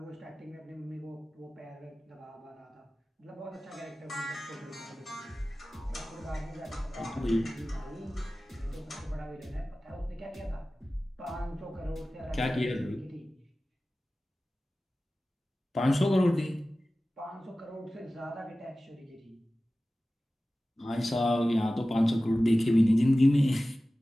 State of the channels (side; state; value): both; normal; correlation 0.96